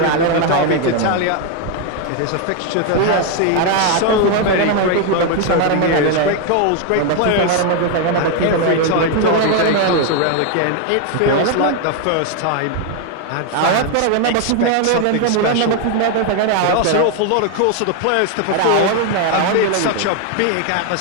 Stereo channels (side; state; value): both; different; correlation 0.01